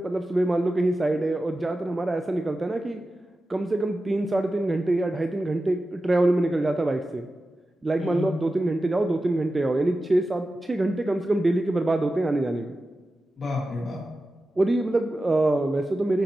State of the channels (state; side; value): normal; both; correlation 0.93